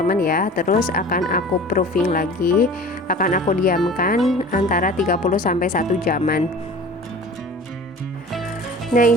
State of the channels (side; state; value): both; normal; correlation 0.41